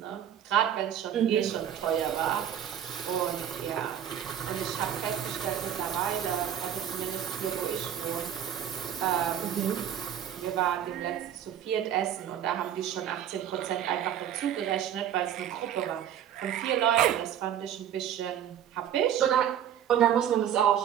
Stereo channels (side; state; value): left; quieter; 9.9 dB